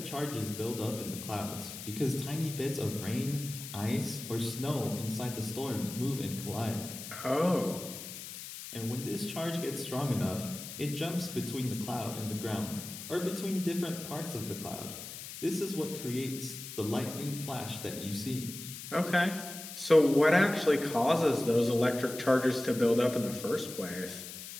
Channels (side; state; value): left; noise; hiss, 10 dB below the sound